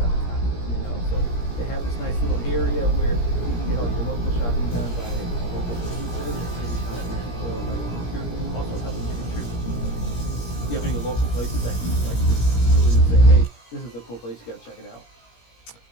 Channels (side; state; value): right; late; 17 ms